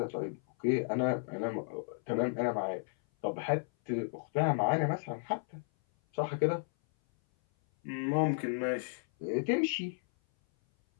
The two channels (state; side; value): silent; right; 55 dB below the other